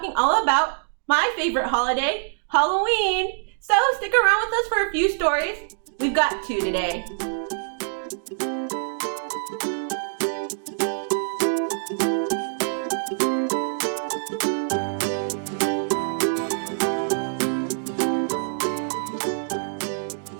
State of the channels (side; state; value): left; silent; digital silence